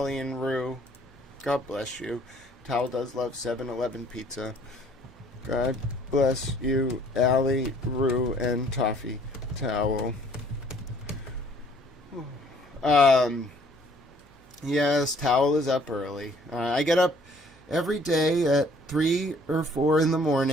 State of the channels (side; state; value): both; normal; correlation 0.59